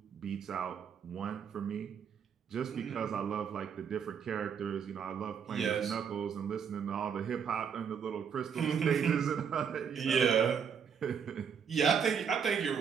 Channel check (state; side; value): quieter; left; 7.1 dB